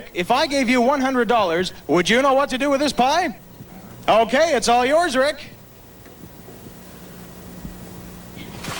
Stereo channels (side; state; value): both; identical; correlation 1.00